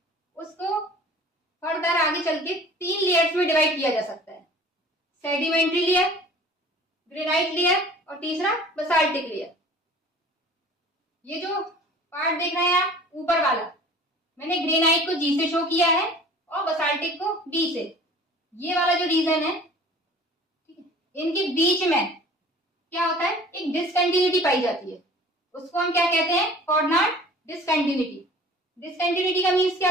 उसको फर्दर आगे चल के 3 लेयर्स में डिवाइड किया जा सकता है, सेडिमेंट्री लेयर, ग्रेनाइट लेयर और तीसरा बेसाल्टिक लेयर। ये जो पार्ट देख रहे हैं आप ऊपर वाला मैंने ग्रेनाइट को जी से शो किया है और बसाल्टिक को बी से। ये वाला जो रीजन है, ठीक है, इनके बीच में क्या होता है, एक डिसकंटिन्यूटी पाई जाती है। उसको हम क्या कहते हैं, कोऑर्डिनेट डिसकंटिन्यूटी। डिसकंटिन्यूटी का मीन्स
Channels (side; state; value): both; normal; correlation 0.46